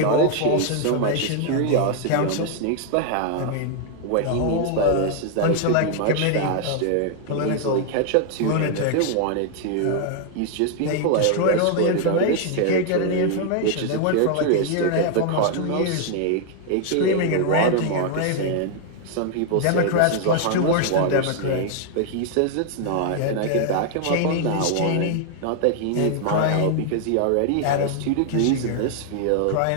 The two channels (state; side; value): different; both; correlation 0.00